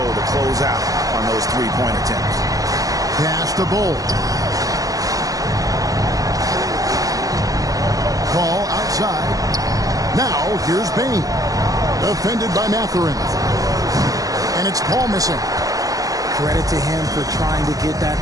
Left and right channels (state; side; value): late; left; 0.17 ms